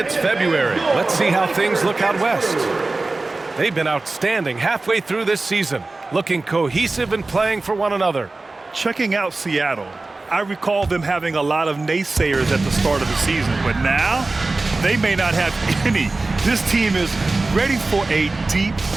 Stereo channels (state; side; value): quieter; left; 3.3 dB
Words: February. Let's see how things look out west. They've been outstanding halfway through this season, looking cohesive and playing for one another. Checking out Seattle, I recall them having a lot of naysayers at the start of the season, but now they may not have any. This team is ready for a deep